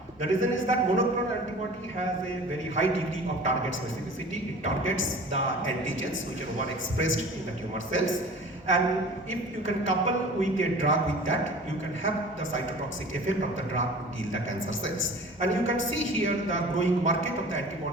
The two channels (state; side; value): normal; both; correlation 0.42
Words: The reason is that monoclonal antibody has a very high degree of target specificity. It targets the antigens which are overexpressed in the tumor cells. And if you can couple with a drug with that, you can have the cytotoxic effect of the drug to kill the cancer cells. And you can see here the growing market of the